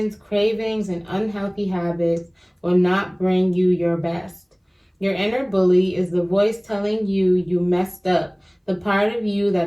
cravings, and unhealthy habits will not bring you your best. Your inner bully is the voice telling you you messed up, the part of you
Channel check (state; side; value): identical; both; correlation 1.00